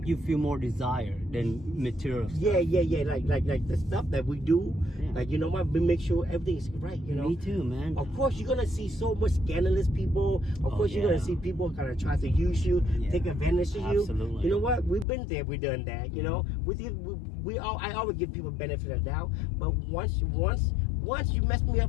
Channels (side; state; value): right; drops out; at 15.1 s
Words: you feel more desire than material stuff. Yeah. Like the stuff that we do, like, you know what, we make sure everything is right, you know. Me too, man. Of course you're gonna see so much scandalous people. Of course you're gonna see people kind of try to use you, take advantage of you. Absolutely. You know what, we've been there, we've done that, you know. I always give people benefit of the doubt, but once you mess me